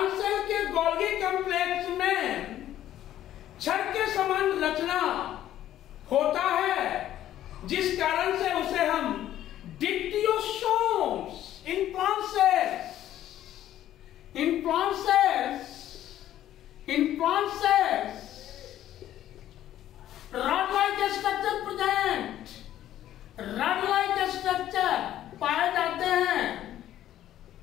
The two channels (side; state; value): right; quieter; 12.4 dB